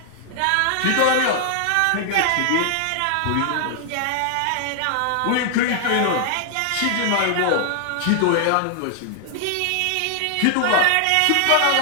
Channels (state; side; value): different; both; correlation 0.00